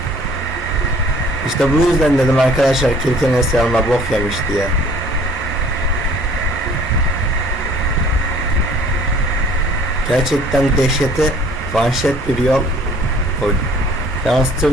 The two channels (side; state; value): both; normal; correlation 0.53